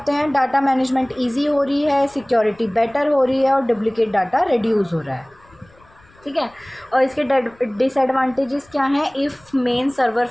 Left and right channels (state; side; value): noise; left; rumble, 29 dB below the sound